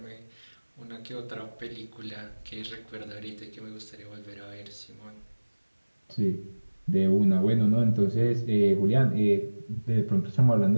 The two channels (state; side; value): inverted; both; correlation -1.00